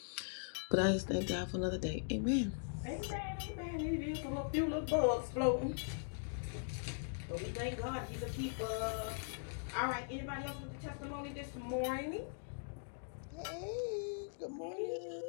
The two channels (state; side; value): silent; right; digital silence